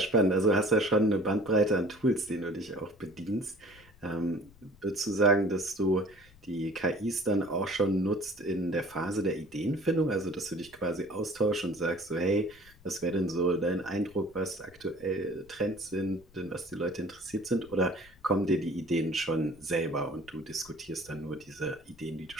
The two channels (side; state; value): left; noise; rumble, 26 dB below the sound